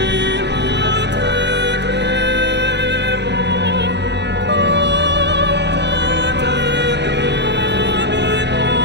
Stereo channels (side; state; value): left; late; 0.50 ms